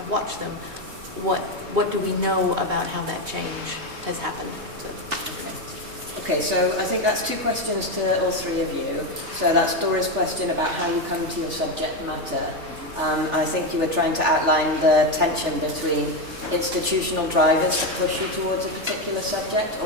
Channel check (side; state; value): left; late; 3.4 ms